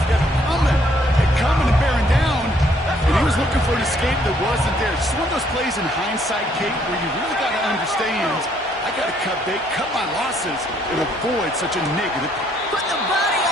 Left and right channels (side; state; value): both; normal; correlation 0.67